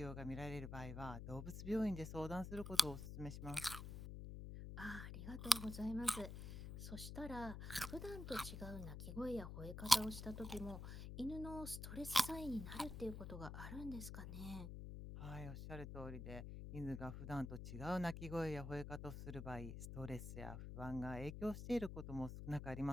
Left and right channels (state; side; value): noise; left; hum, 7 dB below the sound